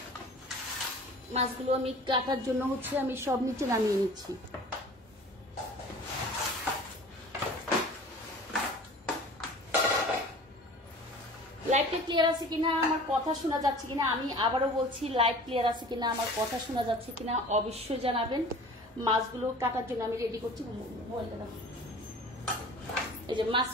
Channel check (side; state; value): both; normal; correlation 0.43